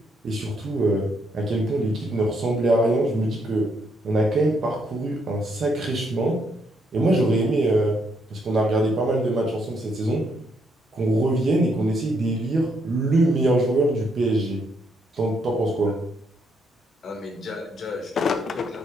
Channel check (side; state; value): both; normal; correlation 0.74